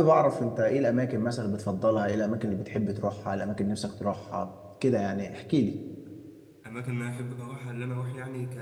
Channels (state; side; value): identical; both; correlation 1.00